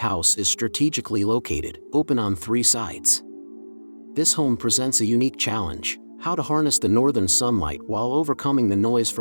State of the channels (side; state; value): both; inverted; correlation -1.00